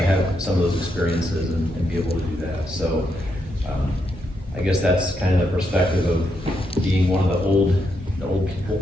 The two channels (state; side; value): normal; both; correlation 0.81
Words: have some of those experiences and be able to do that. So I guess that's kind of the perspective of being one of the old